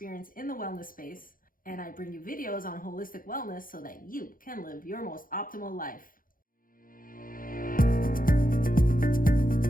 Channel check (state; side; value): late; right; 0.41 ms